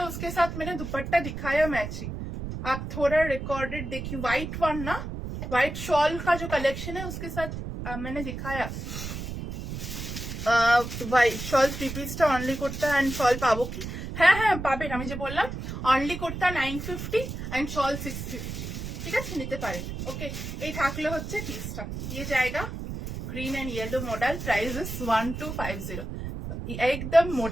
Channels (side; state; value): right; noise; rumble, 7 dB below the sound